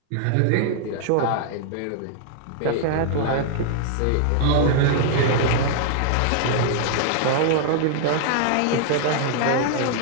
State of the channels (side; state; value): both; different; correlation -0.01